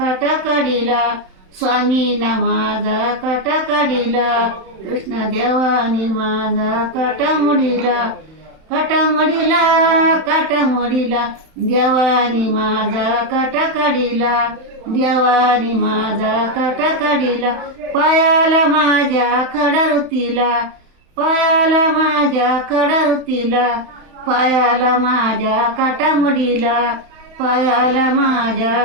काढिला, स्वामीना माझा काटा काढिला, कृष्ण देवानी माझा काटा मडीला, काटा मडीला, काटा मडीला, देवानी माझा काटा काढिला, देवानी माझा काटा काढिला, पायाला माझ्या खडा रुतीला, पायाला माझ्या खडा रुतीला, पायाला माझ्या काटा मडीला, पायाला माझ्या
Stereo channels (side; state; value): left; late; 31 ms